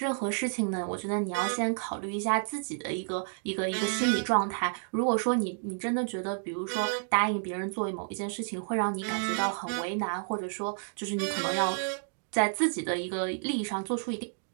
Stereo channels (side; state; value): left; silent; digital silence